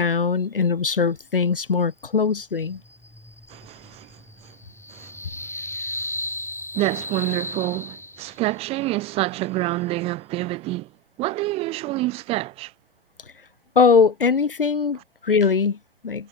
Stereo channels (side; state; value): both; normal; correlation 0.05